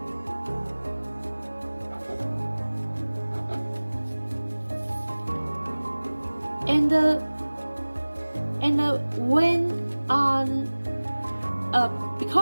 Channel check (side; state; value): both; inverted; correlation -1.00